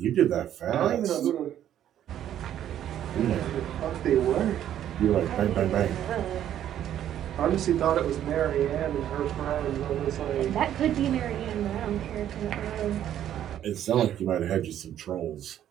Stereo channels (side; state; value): left; quieter; 11.0 dB